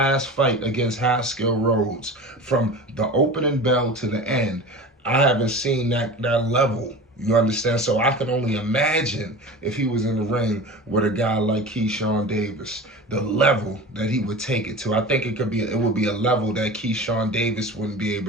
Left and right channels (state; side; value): normal; both; correlation 0.33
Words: fight against Haskell Rhodes, from the opening bell to the end, I haven't seen that level. You understand? So I can only imagine if he was in the ring with a guy like Keyshawn Davis, the level that he would take it to. I think it would be a level that Keyshawn Davis wouldn't be